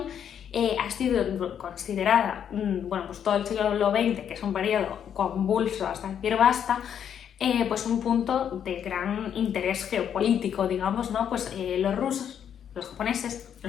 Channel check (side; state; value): right; quieter; 8.8 dB